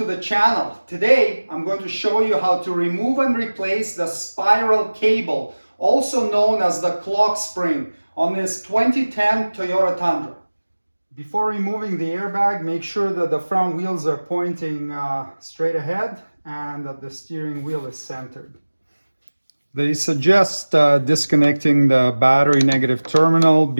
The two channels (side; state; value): both; inverted; correlation -1.00